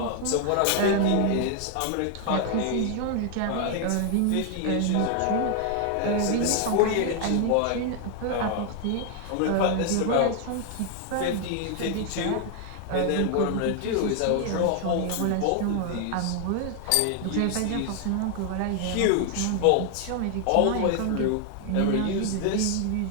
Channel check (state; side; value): different; both; correlation 0.00